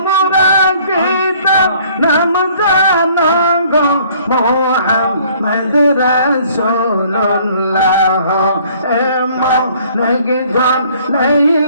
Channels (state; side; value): inverted; both; correlation -0.58